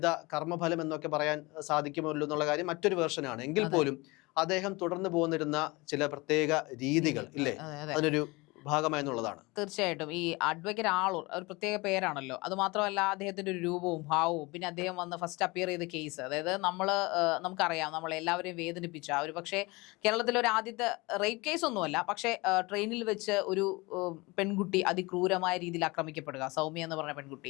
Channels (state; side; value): quieter; right; 24.1 dB